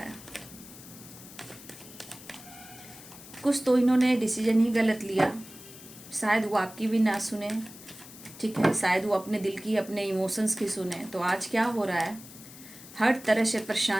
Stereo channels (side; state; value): left; noise; hiss, 17 dB below the sound